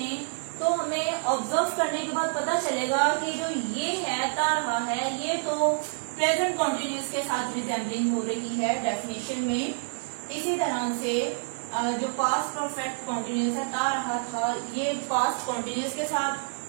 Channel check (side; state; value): left; silent; 59 dB below the other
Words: तो हमें ऑब्जर्व करने के बाद पता चलेगा कि जो ये है ता रहा है, ये तो प्रेजेंट कॉन्टिन्यूस के साथ रिजेंबलिंग हो रही है डेफिनेशन में। इसी तरह से जो पास्ट परफेक्ट कॉन्टिन्यूस है ता रहा था, ये पास्ट कॉन्टिन्यूस के